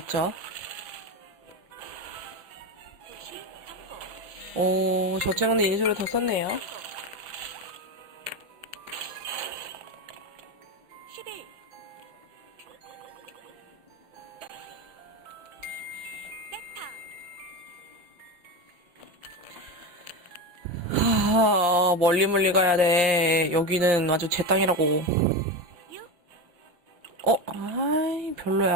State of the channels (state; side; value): late; left; 5.7 ms